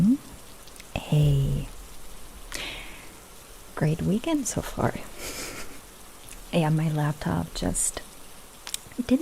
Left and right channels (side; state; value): both; identical; correlation 1.00